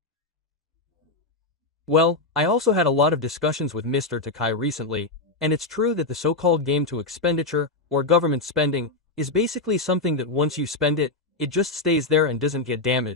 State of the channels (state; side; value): quieter; right; 3.3 dB